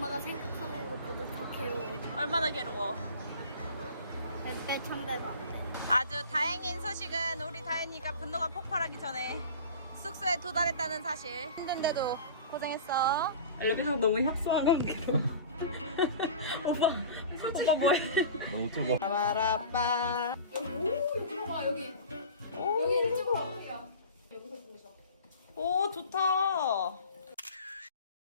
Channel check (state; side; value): inverted; both; correlation -0.39